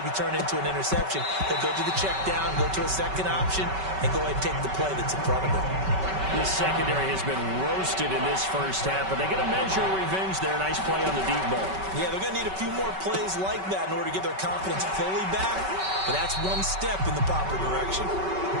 turn into an interception. He'll go to the check down, go to a second option, and go ahead and take the play that's in front of him. The secondary has been roasted in this first half, but they get a measure of revenge there. Nice play on the deep ball. Yeah, they're going to need a few more plays like that in order to get their confidence fully back, but that's one step in the proper direction.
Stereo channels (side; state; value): left; late; 5.2 ms